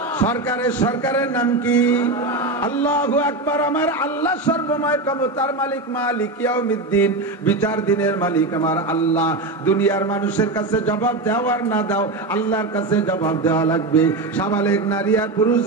সরকারের নাম কি? আল্লাহু আকবার। আমার আল্লাহ সর্বময় ক্ষমতার মালিক, মালিক ইয়াউমিদ্দিন, বিচার দিনের মালিক আমার আল্লাহ। দুনিয়ার মানুষের কাছে জবাব দেওয়ার না দাও, আল্লাহর কাছে জবাব দেওয়া লাগবে। সাবালেগ নারী আর পুরুষ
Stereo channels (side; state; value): left; quieter; 3.0 dB